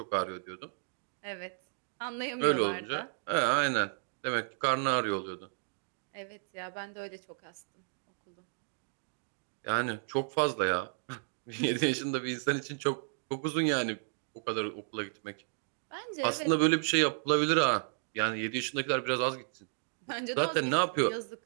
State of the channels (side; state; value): left; silent; digital silence